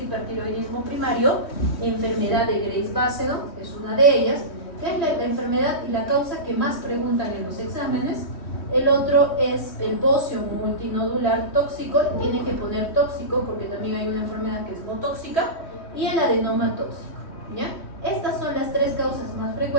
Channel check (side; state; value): right; late; 3.1 ms